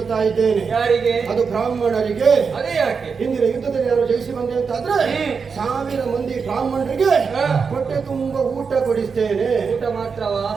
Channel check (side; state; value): left; quieter; 5.5 dB